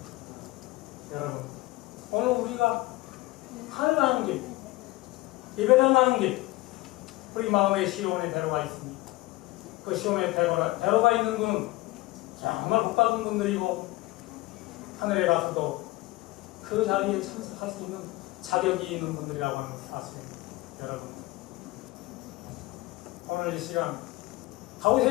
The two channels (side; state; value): right; quieter; 19.7 dB